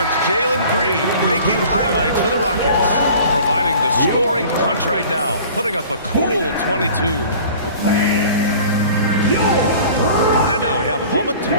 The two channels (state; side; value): inverted; both; correlation -0.45